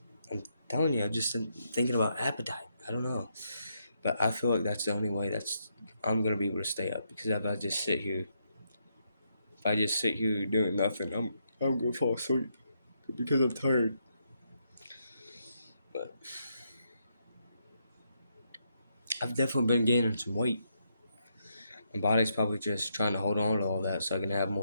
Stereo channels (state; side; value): inverted; both; correlation -0.78